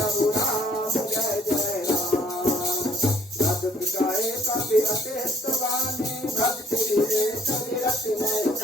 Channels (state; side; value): normal; both; correlation 0.61